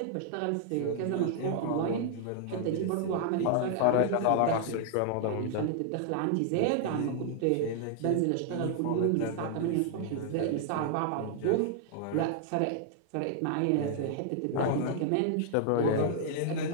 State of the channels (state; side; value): different; both; correlation 0.00